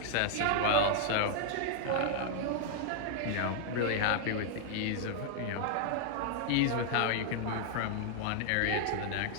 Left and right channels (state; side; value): different; both; correlation 0.00